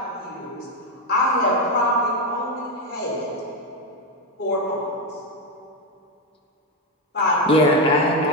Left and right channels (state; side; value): normal; both; correlation 0.08